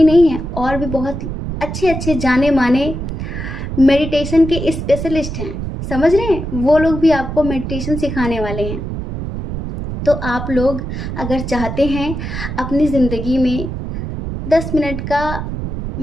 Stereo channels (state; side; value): noise; right; rumble, 6 dB below the sound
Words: नहीं हैं, और भी बहुत अच्छे अच्छे जाने माने मेडिटेशन के स्पेशलिस्ट हैं। समझ रहे हैं? वो लोग भी आपको मेडिटेशन सिखाने वाले हैं। तो आप लोग अगर चाहते हैं अपनी ज़िंदगी में 10 मिनट का